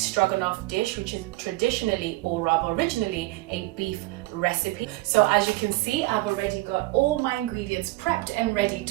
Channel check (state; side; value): quieter; left; 20.4 dB